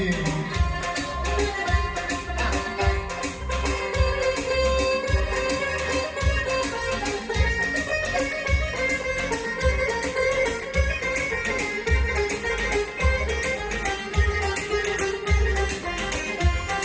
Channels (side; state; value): both; identical; correlation 1.00